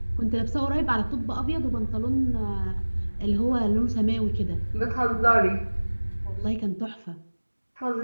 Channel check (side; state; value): both; inverted; correlation -1.00